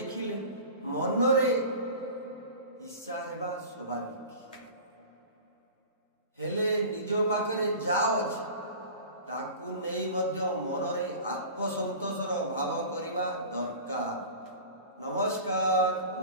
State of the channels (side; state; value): both; inverted; correlation -0.38